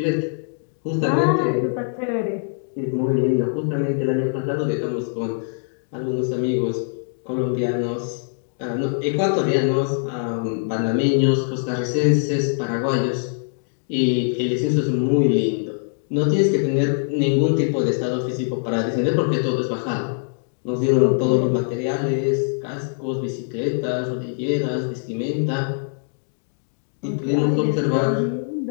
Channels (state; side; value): silent; right; digital silence